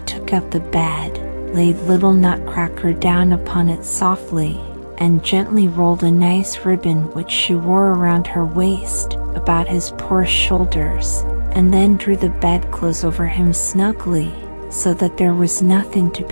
took up the bed, laid little Nutcracker down upon it softly, and gently rolled a nice ribbon which she wore around her waist about his poor shoulders, and then drew the bedclothes over him snugly, so that there was nothing to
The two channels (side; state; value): both; inverted; correlation -1.00